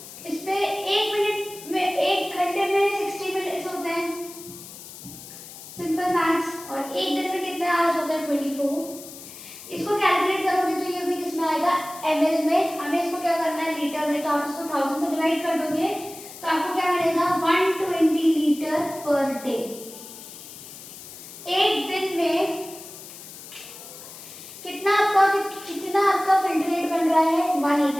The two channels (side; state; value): left; noise; hiss, 15 dB below the sound